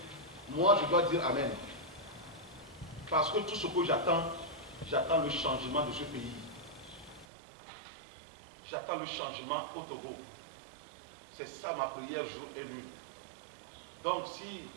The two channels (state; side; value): drops out; left; at 7.2 s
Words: moi je dois dire Amen. Parce que tout ce que j'attends le changement de ce pays. J'attends le changement au Togo. C'est ça ma prière jour et nuit. Donc